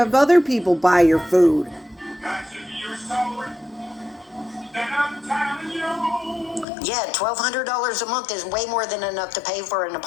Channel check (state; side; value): drops out; right; at 6.7 s